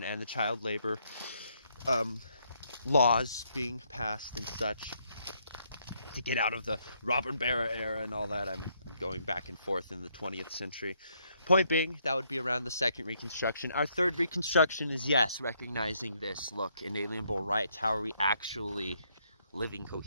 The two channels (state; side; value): inverted; both; correlation -0.73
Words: and the child labor laws being passed and such to get out of the Robert Barra era and all that. I'm going back and forth in the 20th century. Point being, that would be around the second Reconstruction. Our third Reconstruction is, yes, recognizing this. Look, inalienable rights. How are we actually living